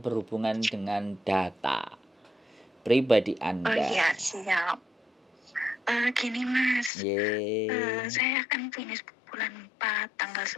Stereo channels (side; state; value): right; drops out; at 6.9 s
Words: dengan data pribadi Oh Anda. iya, siap. Gini Mas, Ye, saya akan finish bulan 4 tanggal